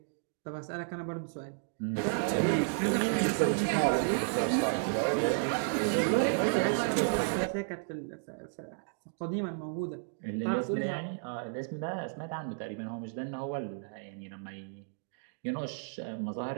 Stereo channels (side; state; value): left; silent; digital silence